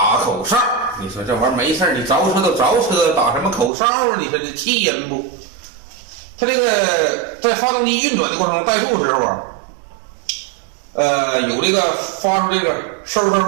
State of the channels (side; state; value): left; drops out; at 3.7 s